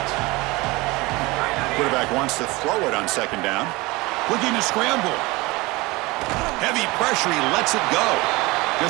Quarterback wants to throw it on second down. Looking to scramble. Heavy pressure, he lets it go.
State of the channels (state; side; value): quieter; left; 22.6 dB